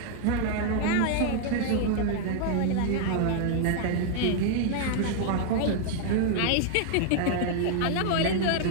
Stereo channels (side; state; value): both; different; correlation 0.00